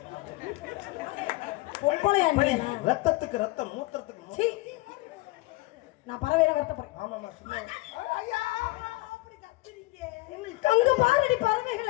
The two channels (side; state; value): right; quieter; 21.4 dB